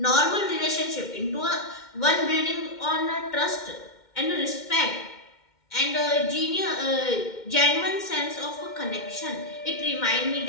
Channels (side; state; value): right; late; 2.2 ms